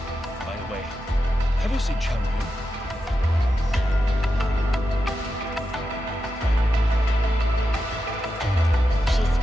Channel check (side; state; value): both; normal; correlation 0.88